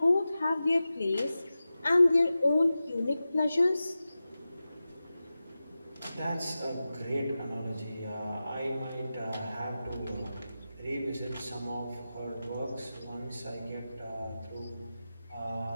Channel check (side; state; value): both; inverted; correlation -0.94